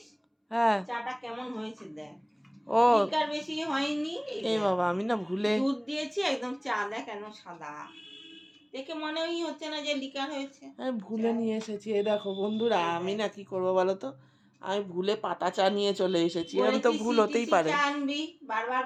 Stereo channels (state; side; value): identical; both; correlation 1.00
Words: হ্যাঁ। চাটা কেমন হয়েছে দেখ। ও লিকার বেশি হয়নি। এই বাবা, আমি না ভুলে দুধ দিয়েছি একদম, চা দেখ কেন সাদা, দেখে মনেই হচ্ছে না যে লিকার হয়েছে। আমি ভুলে নিয়ে এসেছি। এই দেখো বন্ধুরা, আমি না কি করবো বলো তো, আমি ভুলে পাতা চা নিয়ে চলে এসেছি। আমি তো ভুল হতেই পারে। চা আনবি, বারবার